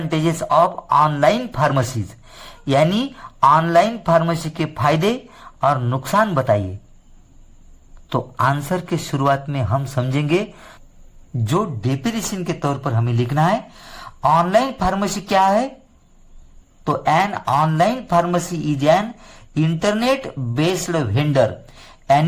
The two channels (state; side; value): identical; both; correlation 1.00